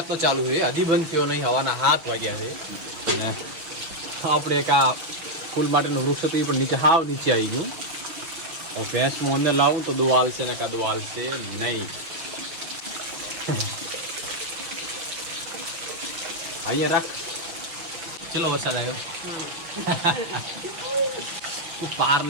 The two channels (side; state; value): left; late; 6.2 ms